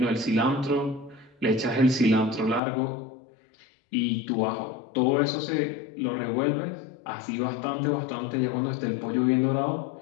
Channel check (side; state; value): right; drops out; at 2.6 s